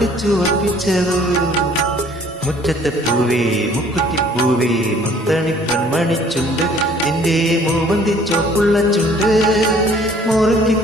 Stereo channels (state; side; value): normal; both; correlation 0.56